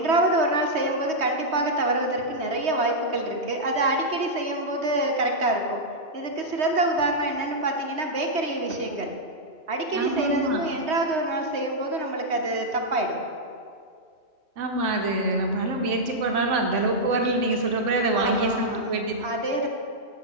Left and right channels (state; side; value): late; left; 3.2 ms